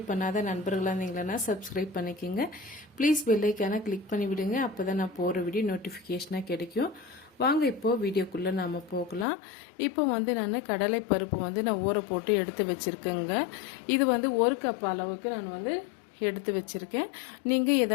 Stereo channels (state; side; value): drops out; right; at 9.2 s